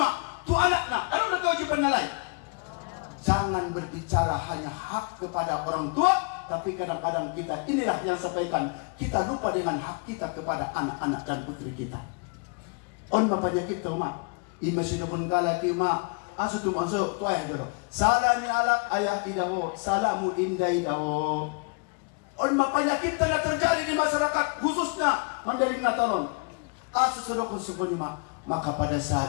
Tu anaknya, adong lo kewajiban lain. Jangan berbicara hanya hak kepada orang tua, tapi kadang-kadang kita inilah yang sampaikan. Kita lupa dengan hak kita kepada anak-anak dan putri kita. On bapaknya kita mak, imasih pun kalaki mak. Asu tu masuk tu ayah dulu. Salah ni alak ayah idawo, salahmu indah idawo. On bapaknya kita yang terjadi di masyarakat khususnya Mandailing Natalon. Asu sudah konsumennya, maka pada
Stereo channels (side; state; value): right; quieter; 35.6 dB